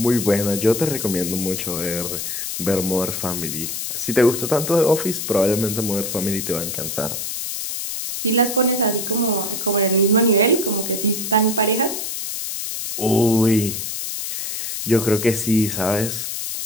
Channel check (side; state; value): left; noise; hiss, 4 dB below the sound